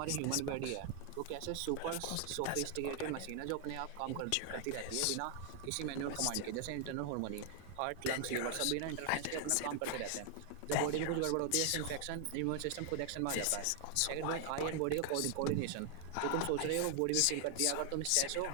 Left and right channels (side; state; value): both; different; correlation 0.00